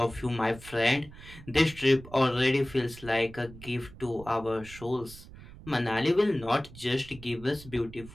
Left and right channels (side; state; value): right; noise; rumble, 17 dB below the sound